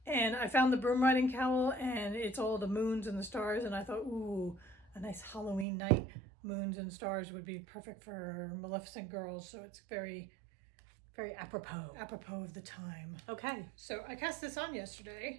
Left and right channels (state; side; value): drops out; left; at 5.7 s